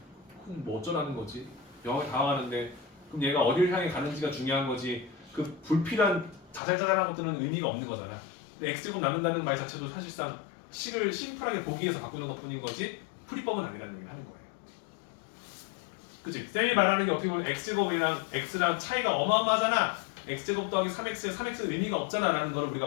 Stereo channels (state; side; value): drops out; right; at 6.6 s